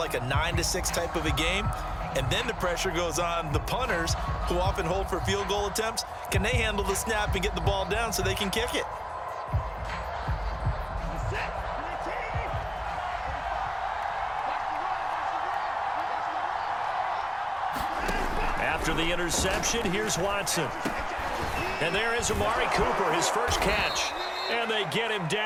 a 9-6 type of a game? And then the pressure goes on the punters, who often hold for field goal attempts. Can they handle the snap and get the ball down so they can kick it? After the interception, here's Watson. And there is Amari Cooper, his first catch. And they get him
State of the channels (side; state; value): both; identical; correlation 1.00